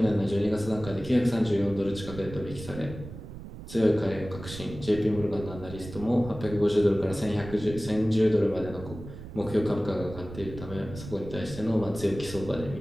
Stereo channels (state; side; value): noise; right; rumble, 12 dB below the sound